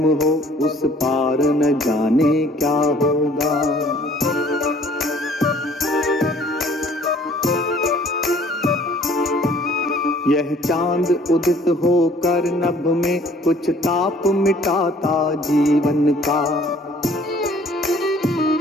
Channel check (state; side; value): normal; both; correlation 0.55